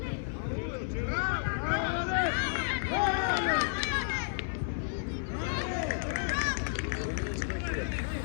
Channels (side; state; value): right; silent; 57 dB below the other